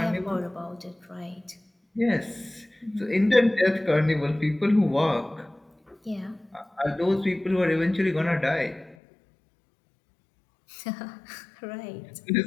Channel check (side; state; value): right; drops out; at 9.0 s